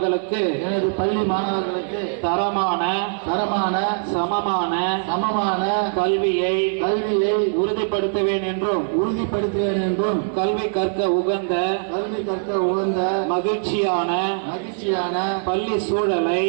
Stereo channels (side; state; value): left; silent; 64 dB below the other